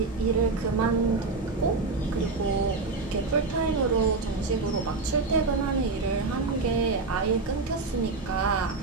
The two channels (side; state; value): left; quieter; 3.9 dB